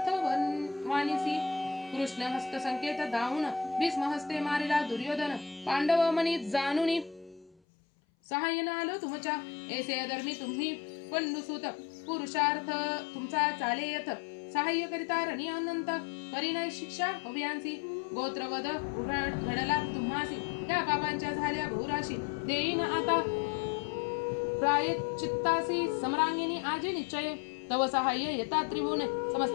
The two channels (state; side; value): drops out; right; at 7.6 s